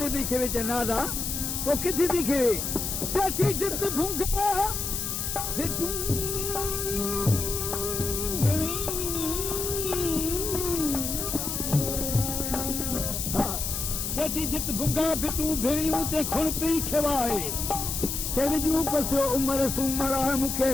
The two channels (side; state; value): left; noise; hiss, 3 dB below the sound